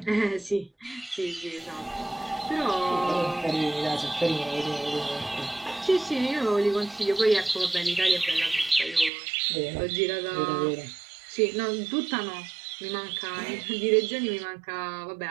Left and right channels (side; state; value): left; drops out; at 9.1 s